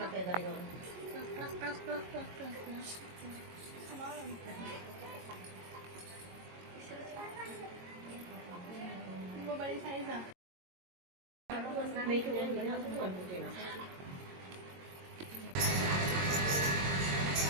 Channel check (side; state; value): left; late; 22 ms